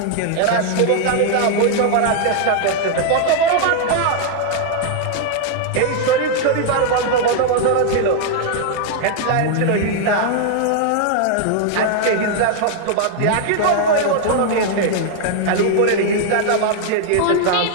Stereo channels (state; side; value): different; both; correlation 0.00